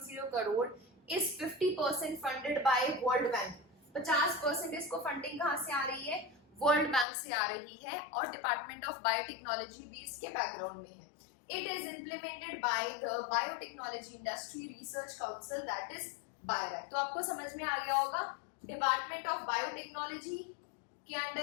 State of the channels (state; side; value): drops out; right; at 7.1 s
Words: करोड़. इस 50% फंडेड बाय वर्ल्ड बैंक. 50% इसको फंडिंग कहाँ से आ रही है? वर्ल्ड बैंक से आ रही है और डिपार्टमेंट ऑफ बायोटेक्नोलॉजी भी इसके बैकग्राउंड में है. It is implemented by the Biotechnology Industry Research Council, that is BIRAC. तो आपको समझ में आ गया होगा डिपार्टमेंट ऑफ बायोटेक्नोलॉजी के